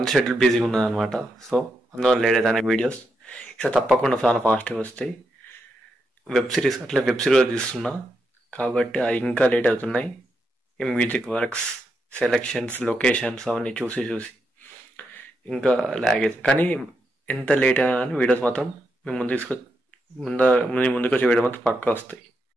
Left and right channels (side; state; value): both; normal; correlation 0.83